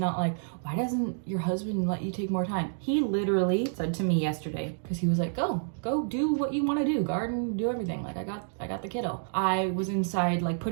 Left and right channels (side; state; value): left; silent; digital silence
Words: like, why doesn't your husband let you take more time? He literally said to me yesterday, because he was like, go do what you want to do, garden, do everything. Like I got the kiddo. I was inside like